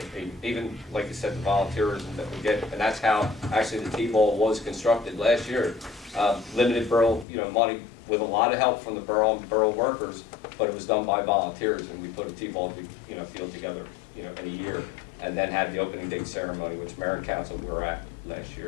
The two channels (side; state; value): right; drops out; at 7.2 s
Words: and even, like you said, the volunteers that we get, and that's how actually the T-ball was constructed last year. Limited borough, money with a lot of help from the borough and borough workers, but it was done by volunteers, and we put a T-ball, field together, in a year, and then had the opening day ceremony, which Mayor and Council were at last